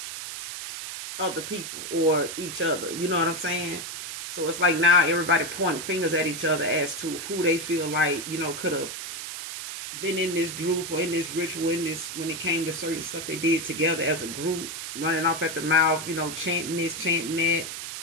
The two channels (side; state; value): right; noise; hiss, 7 dB below the sound